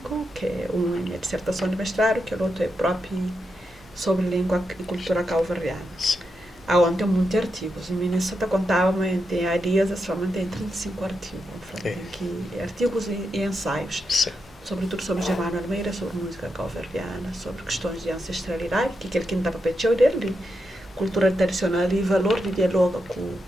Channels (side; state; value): both; normal; correlation 0.85